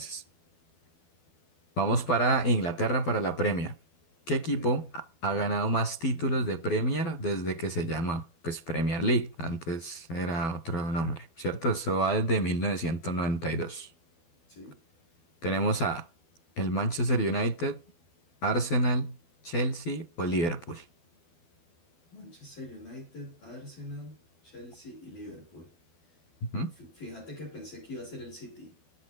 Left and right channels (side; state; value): right; late; 12 ms